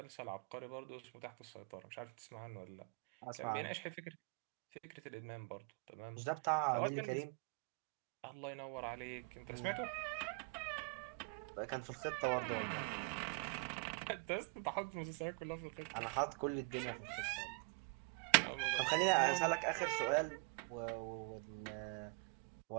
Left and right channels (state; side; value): quieter; left; 35.0 dB